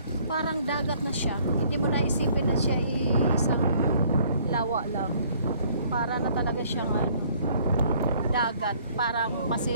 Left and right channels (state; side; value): inverted; both; correlation -0.60